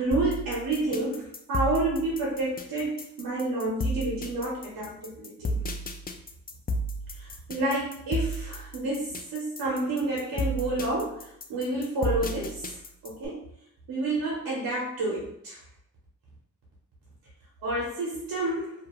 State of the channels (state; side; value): normal; both; correlation 0.33